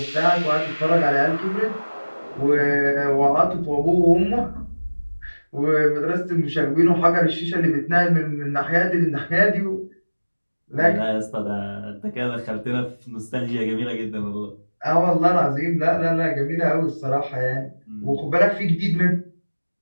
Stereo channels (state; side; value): inverted; both; correlation -1.00